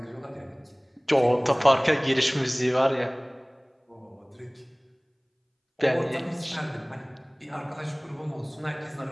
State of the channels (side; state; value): both; identical; correlation 1.00